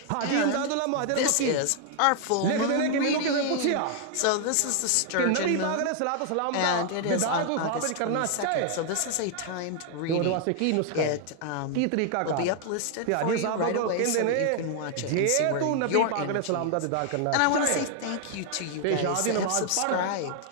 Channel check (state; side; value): different; both; correlation 0.00